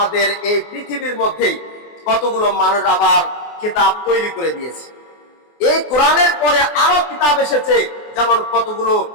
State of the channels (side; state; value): right; late; 24 ms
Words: এই পৃথিবীর মধ্যে কতগুলো মানুষ আবার কিতাব তৈরি করে দিয়েছে। এই কোরআনের পরে আরো কিতাব এসেছে, যেমন কতগুলো